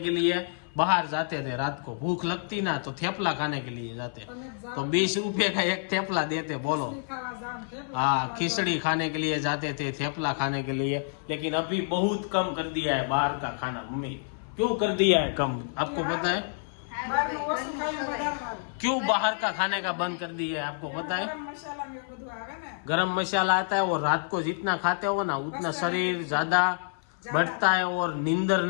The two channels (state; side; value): silent; right; 56 dB below the other